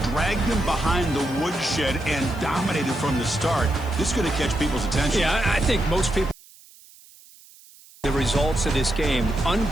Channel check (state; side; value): noise; right; hiss, 24 dB below the sound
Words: dragged them behind the woodshed and dominated from the start. This is going to catch people's attention. Yeah, I think most people the results of this game.